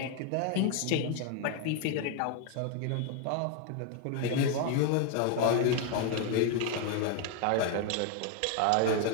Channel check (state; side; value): different; both; correlation 0.01